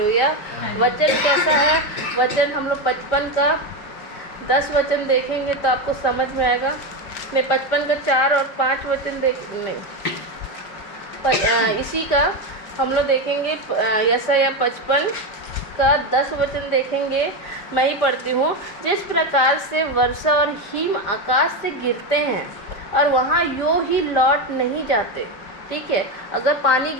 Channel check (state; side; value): late; right; 5.0 ms